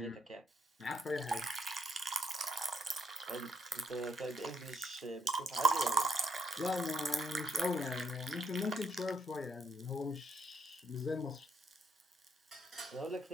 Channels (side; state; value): both; normal; correlation 0.72